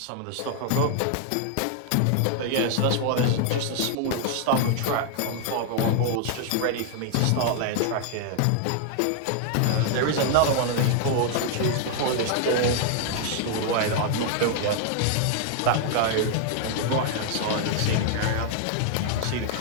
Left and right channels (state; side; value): different; both; correlation 0.00